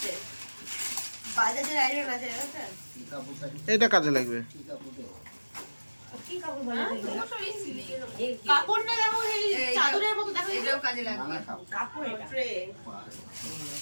বাজাজের আয়রন আছে। এটা কাজে লাগবে। কি কাপড় বলে? কাপড়টা দেখো, এই চাদরের মতো দেখো, এটাও কাজে লাগবে। কাপড় এটা, ট্রে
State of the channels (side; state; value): both; inverted; correlation -1.00